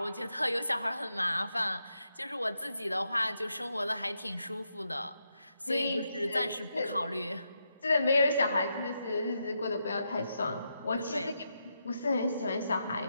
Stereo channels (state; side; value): inverted; both; correlation -0.83